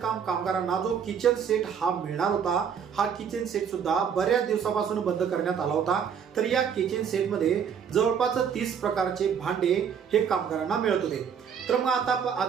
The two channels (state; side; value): quieter; left; 7.5 dB